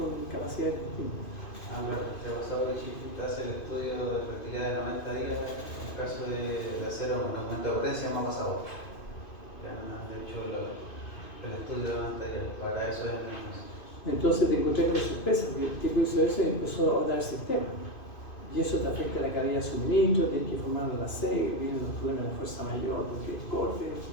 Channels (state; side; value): late; right; 2.5 ms